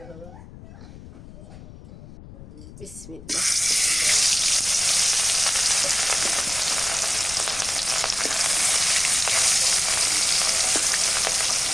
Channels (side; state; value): left; noise; rumble, 17 dB below the sound